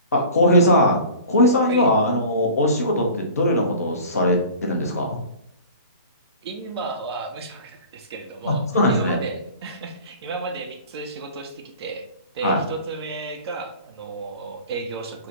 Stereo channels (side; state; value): both; inverted; correlation -0.41